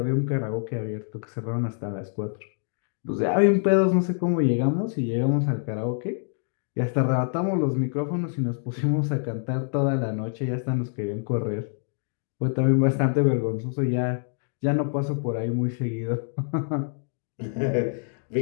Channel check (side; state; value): right; silent; digital silence